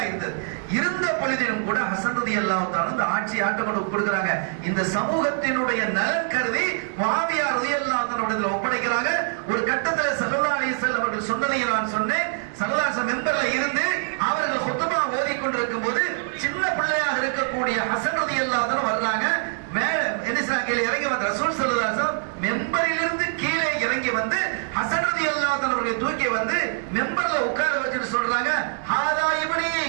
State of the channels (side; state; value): left; silent; digital silence